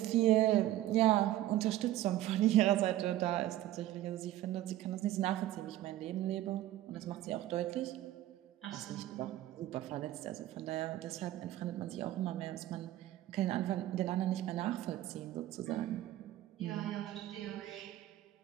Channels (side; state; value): left; quieter; 14.2 dB